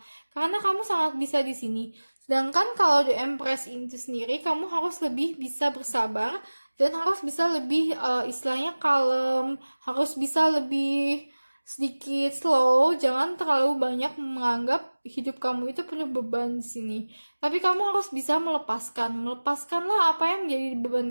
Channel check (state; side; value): inverted; both; correlation -1.00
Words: karena kamu sangat bisa di sini. Sedangkan kalau The Empress itu sendiri, kamu harus lebih bisa bersabar dan harus bisa lebih istilahnya kalem, harus bisa lebih sedikit slow, jangan terlalu banyak menganggap hidup kamu itu penuh beban di sini. Tapi kamu harus bisa melepaskanlah apa yang menjadi